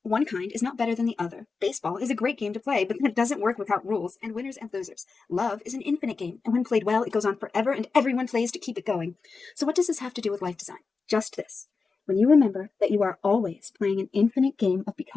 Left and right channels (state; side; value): quieter; right; 4.5 dB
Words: One kind is not better than the other. Baseball is a great game to play, but it doesn't work without rules and winners and losers. Love is an infinite game, and when played well, it goes on forever and everyone plays to keep it going. So what does this have to do with life design? Just this. When you remember that you are always playing an infinite game of